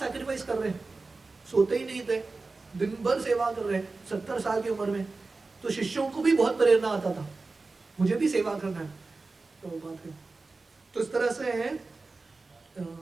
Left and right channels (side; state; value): left; quieter; 3.7 dB